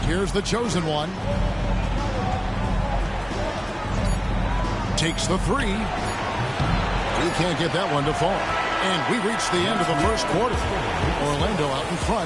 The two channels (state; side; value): identical; both; correlation 1.00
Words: Here's the chosen one. Takes the 3. He can't get that one to fall. And we reached the end of the first quarter. Orlando out in